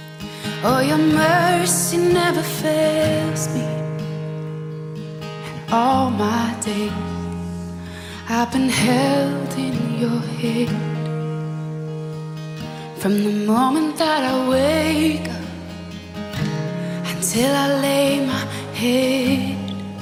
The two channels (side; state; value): both; identical; correlation 1.00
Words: Oh, your mercy never fails me. And all my days I've been held in your hand. From the moment that I wake up until I lay my head,